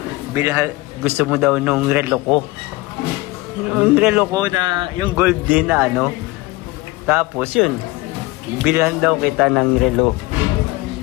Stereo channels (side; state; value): right; quieter; 21.3 dB